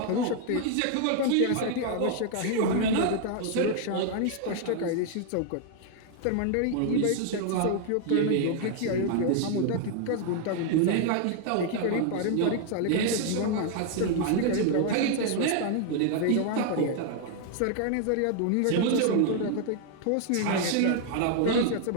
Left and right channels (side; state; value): both; different; correlation 0.00